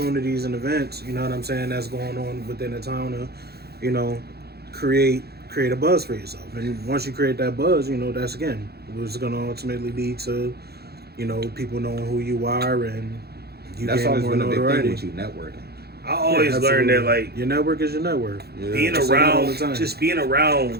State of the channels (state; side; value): late; left; 0.46 ms